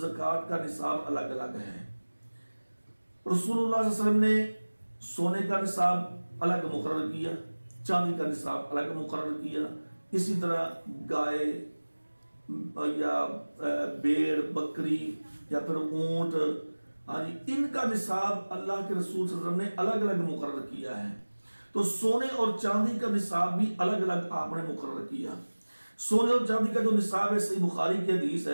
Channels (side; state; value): both; inverted; correlation -1.00